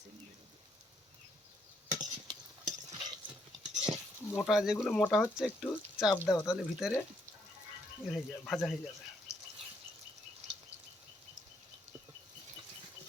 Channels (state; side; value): normal; both; correlation 0.73